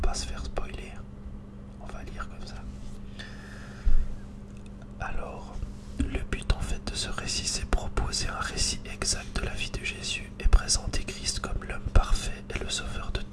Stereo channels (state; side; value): identical; both; correlation 1.00